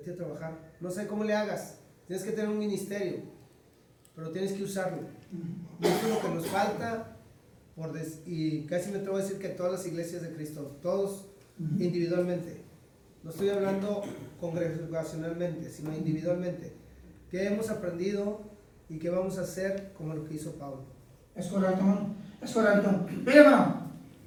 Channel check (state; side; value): identical; both; correlation 1.00